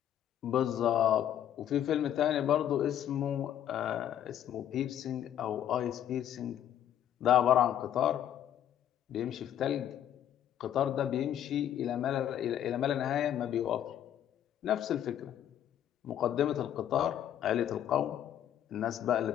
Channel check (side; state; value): right; quieter; 10.6 dB